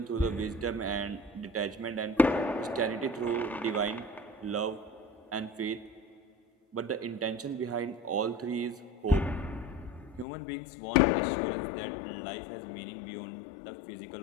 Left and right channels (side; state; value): right; drops out; at 10.2 s